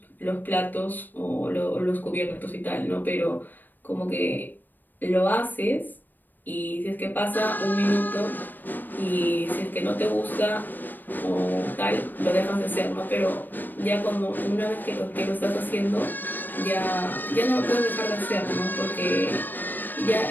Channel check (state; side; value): late; right; 0.090 ms